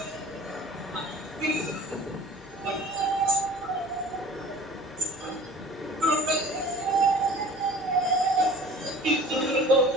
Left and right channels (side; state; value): both; normal; correlation 0.45